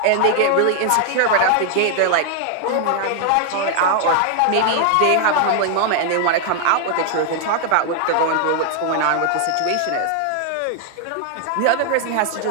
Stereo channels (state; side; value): different; both; correlation 0.00